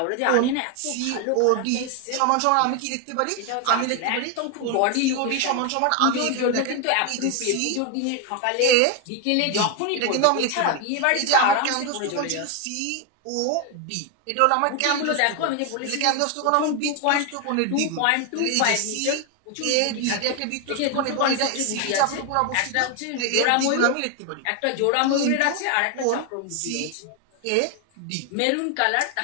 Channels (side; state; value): both; different; correlation 0.01